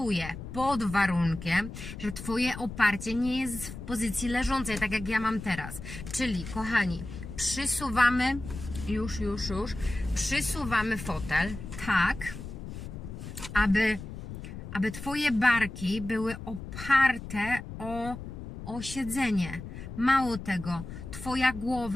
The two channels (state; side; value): noise; left; rumble, 10 dB below the sound